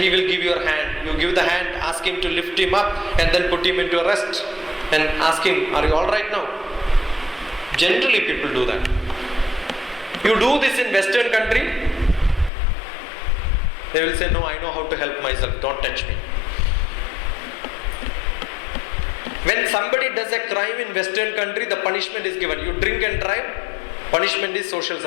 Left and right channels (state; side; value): drops out; right; at 12.5 s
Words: will give your hand. You give the hand, ask him to lift him up, and then put him into a rest. And ask him, are you alright now? Generally people do that. You do this in Western country, they will say, no, I know how to help myself, don't touch me. When somebody does a crime in Western country, the punishment is given. You drink and drive, punishment is social